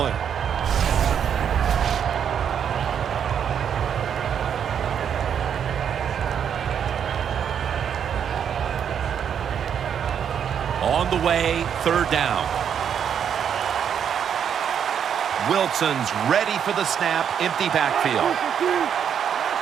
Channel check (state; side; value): quieter; left; 8.2 dB